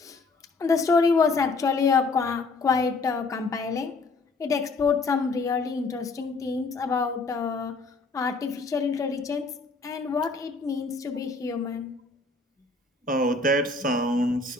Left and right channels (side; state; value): right; quieter; 3.7 dB